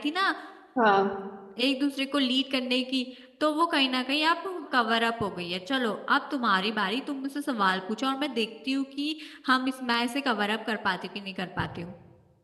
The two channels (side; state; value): both; identical; correlation 1.00